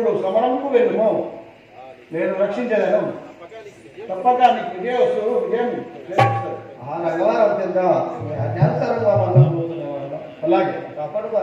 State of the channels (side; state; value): both; identical; correlation 1.00